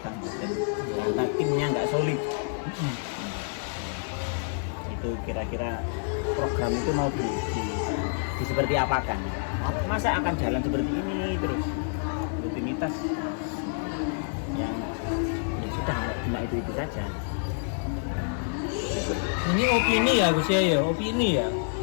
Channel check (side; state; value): right; silent; digital silence